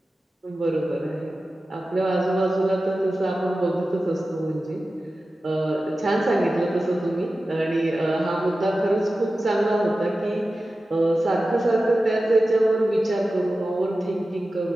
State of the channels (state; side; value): normal; both; correlation 0.94